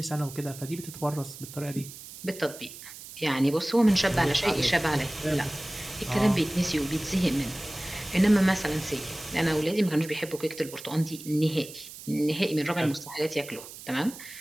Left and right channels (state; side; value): noise; right; hiss, 14 dB below the sound